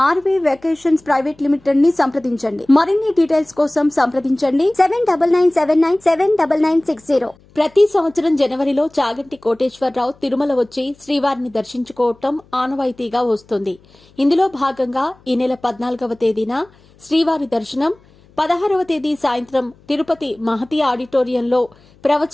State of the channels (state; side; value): noise; left; hum, 29 dB below the sound